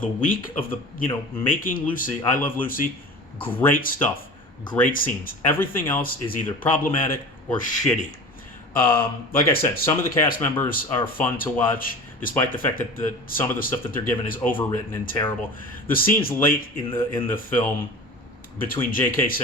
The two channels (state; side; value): normal; both; correlation 0.35